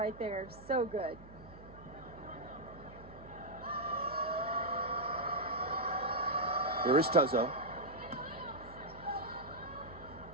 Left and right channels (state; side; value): noise; right; hum, 18 dB below the sound